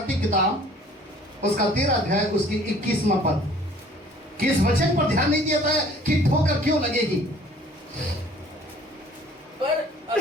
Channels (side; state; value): both; normal; correlation 0.53